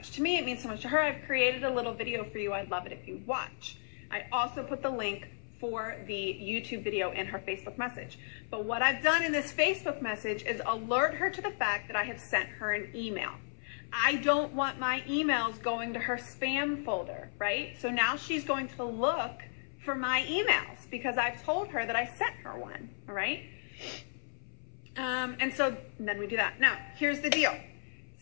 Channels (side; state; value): right; silent; 55 dB below the other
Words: to me. It means so much to her. I've created a little video for you. I'd love it if you watch. I also put the link for the YouTube video in her Facebook message. But what I've done in this Facebook message is alert her to the fact that I have sent her an email. I don't want my emails going to her spam folder, right? So now she's going to look for my emails because I've told her that I sent her one, all right? And so then we do that. Now, here's the deal.